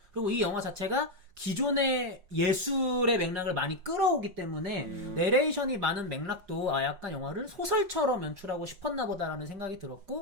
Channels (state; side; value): late; left; 5.6 ms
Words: 그리고 이 영화 자체가 기존의 예술의 맥락을 많이 끌어오기 때문에 내레이션이 많은 맥락도 약간 영화를 소설처럼 연출하고 싶었나 보다라는 생각이